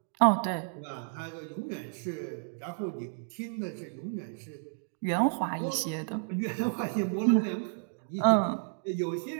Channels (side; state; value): left; silent; digital silence